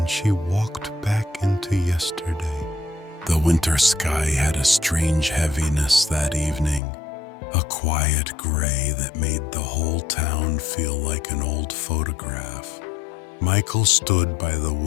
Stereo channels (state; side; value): drops out; right; at 6.8 s